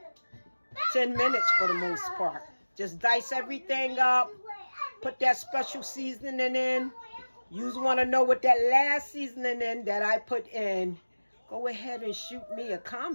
10 minutes for the most part. Just dice everything up, put that special seasoning in. You want to know what that last seasoning in that I put in, go ahead and shoot me a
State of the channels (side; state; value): both; inverted; correlation -1.00